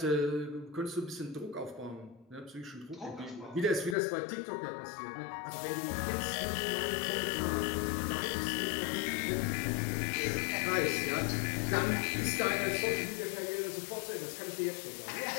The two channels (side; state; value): right; drops out; at 4.0 s